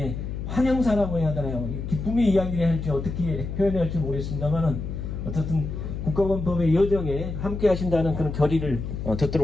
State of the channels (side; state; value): left; noise; hum, 6 dB below the sound